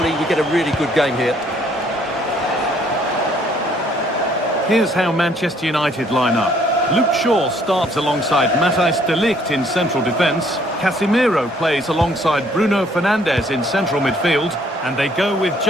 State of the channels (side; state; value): both; normal; correlation 0.63